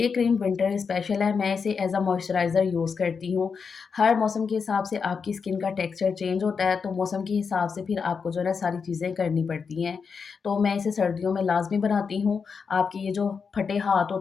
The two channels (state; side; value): quieter; right; 5.7 dB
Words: क्रीम विंटर स्पेशल है, मैं इसे एज़ अ मॉइस्चराइज़र यूज़ करती हूँ। हर मौसम के हिसाब से आपकी स्किन का टेक्सचर चेंज होता है, तो मौसम के हिसाब से फिर आपको जो है ना सारी चीज़ें करनी पड़ती हैं। तो मैं इसे सर्दियों में लाज़मी बनाती हूँ। आपके ये जो फटे हाथ